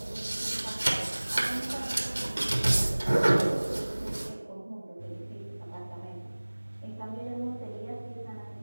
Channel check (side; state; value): both; inverted; correlation -1.00